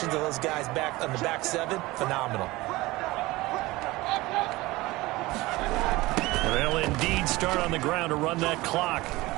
of those guys back on the back 7, phenomenal. They'll indeed start on the ground to run that clock.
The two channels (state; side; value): quieter; left; 20.1 dB